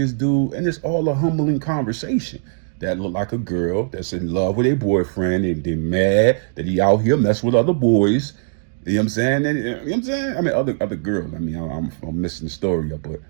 dude, and it's all a humbling conversation. That look like a girl that's in love with a boyfriend, and they're mad that he out here messing with other boys. You know what I'm saying? And, you know what I'm saying? I mean, other girls. I mean, I'm missing the story up, but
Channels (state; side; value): silent; left; digital silence